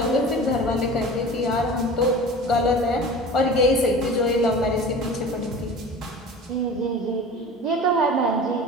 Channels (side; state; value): both; normal; correlation 0.37